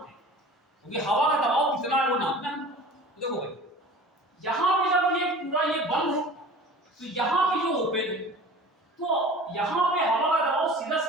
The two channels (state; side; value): normal; both; correlation 0.41